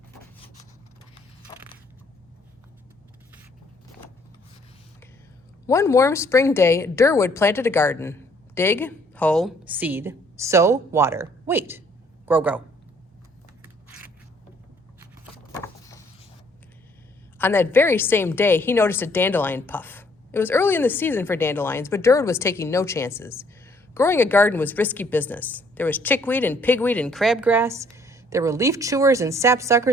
One warm spring day, Durwood planted a garden. Dig, hoe, seed, sow, water, wait, grow, grow. On that very same day, he noticed a dandelion puff. It was early in the season for dandelions, but Durwood was taking no chances. Growing a garden was risky business. There was chickweed and pigweed and crabgrass. There were leaf chewers and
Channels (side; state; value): both; normal; correlation 0.63